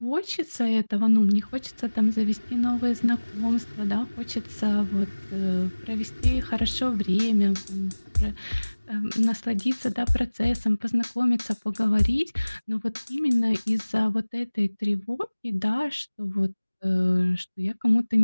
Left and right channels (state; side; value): inverted; both; correlation -1.00